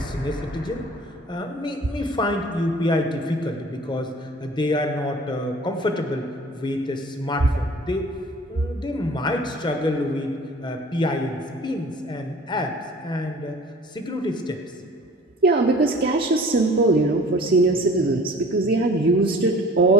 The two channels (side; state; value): both; normal; correlation 0.47